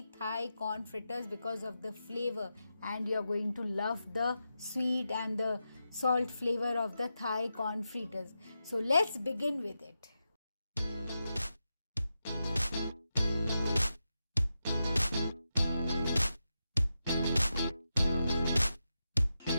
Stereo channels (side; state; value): both; inverted; correlation -0.89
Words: Thai corn fritters because of the flavor, and you're going to love the sweet and the salt flavor of the Thai corn fritters. So let's begin with it.